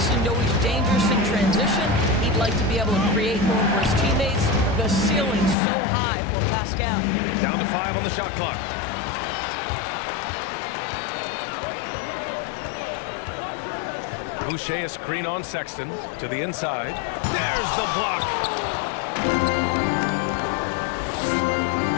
know he's dangerous in transition. He'd like to be able to create more for his teammates. The ceiling's so high for Pascal. Down to 5 on the shot clock. Boucher a screen on Sexton to the inside. There's the block.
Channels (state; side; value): drops out; right; at 5.6 s